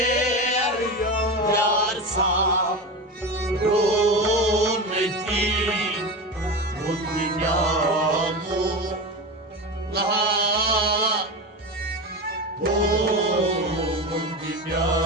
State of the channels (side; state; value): both; normal; correlation 0.23